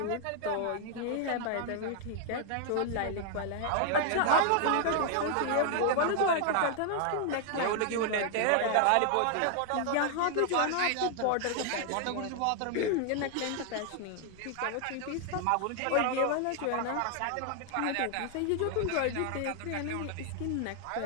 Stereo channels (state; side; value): different; both; correlation 0.00